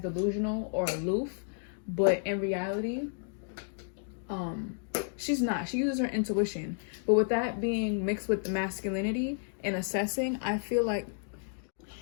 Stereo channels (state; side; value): silent; right; digital silence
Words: or aloof, but in reality, she's not. She uses her intuition. But with that being mixed with the masculinity and assessing, I feel like